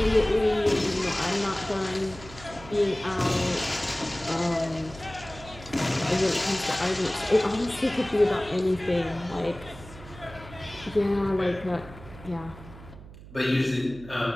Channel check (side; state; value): right; noise; hum, 17 dB below the sound